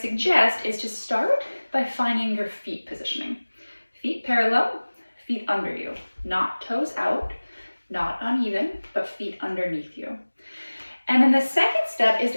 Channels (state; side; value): inverted; both; correlation -1.00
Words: is to start by finding your feet positioning. Feet parallel, feet under you, not toes out, not uneven, but feet underneath you. And then the second step is